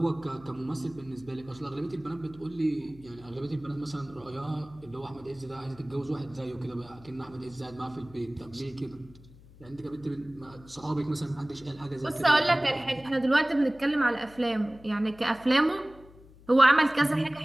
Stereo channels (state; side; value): noise; left; hum, 22 dB below the sound